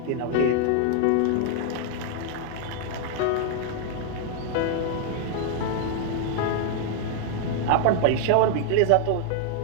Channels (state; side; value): different; both; correlation 0.00